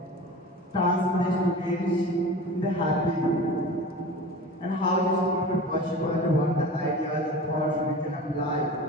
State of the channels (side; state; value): both; normal; correlation 0.36